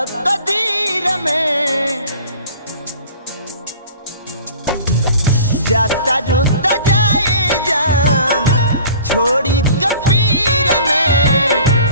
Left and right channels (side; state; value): both; inverted; correlation -0.46